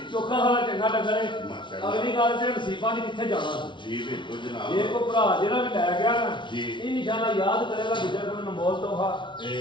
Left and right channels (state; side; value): late; right; 0.24 ms